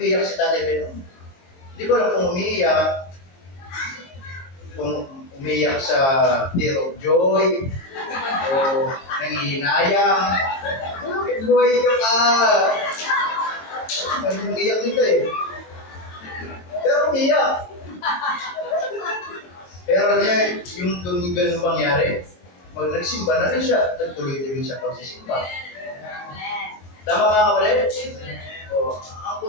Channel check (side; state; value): right; late; 22 ms